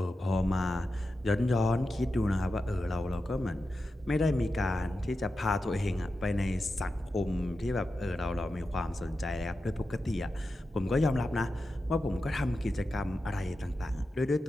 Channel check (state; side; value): normal; both; correlation 0.91